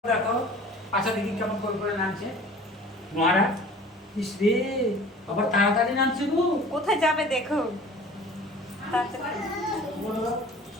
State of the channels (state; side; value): normal; both; correlation 0.45